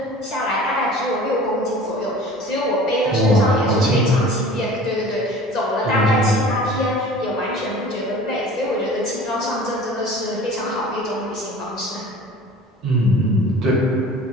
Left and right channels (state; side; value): normal; both; correlation 0.43